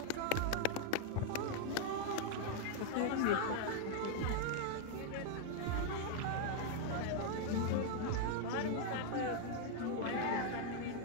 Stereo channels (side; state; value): both; different; correlation 0.00